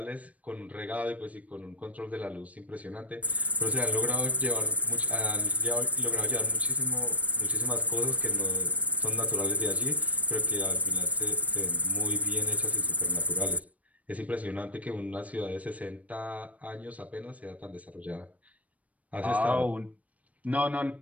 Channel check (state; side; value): late; left; 0.068 ms